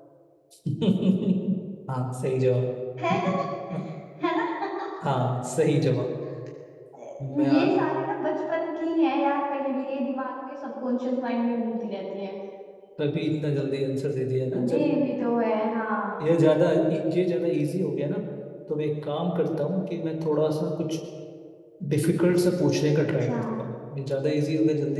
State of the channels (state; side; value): identical; both; correlation 1.00